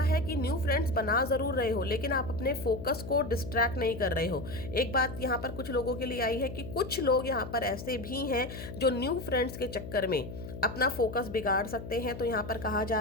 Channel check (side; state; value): left; noise; hum, 10 dB below the sound